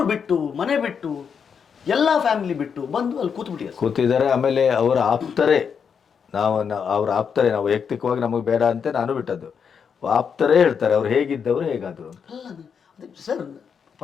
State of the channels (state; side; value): quieter; right; 6.8 dB